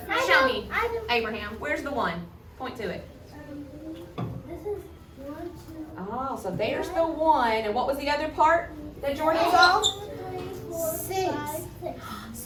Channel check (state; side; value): identical; both; correlation 1.00